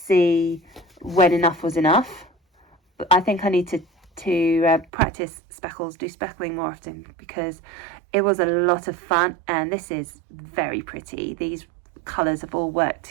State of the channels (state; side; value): drops out; left; at 4.9 s